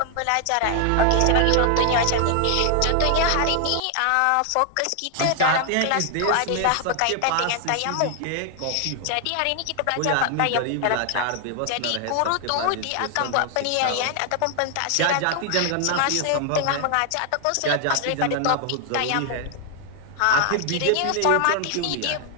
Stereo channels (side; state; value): both; different; correlation 0.00